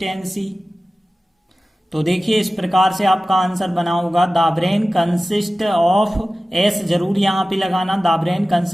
तो देखिए इस प्रकार से आपका आंसर बना होगा, the brain consist of, S जरूर यहाँ पे लगाना, the brain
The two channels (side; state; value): both; normal; correlation 0.96